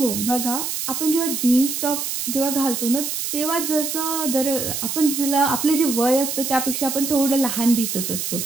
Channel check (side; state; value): right; noise; hiss, 3 dB below the sound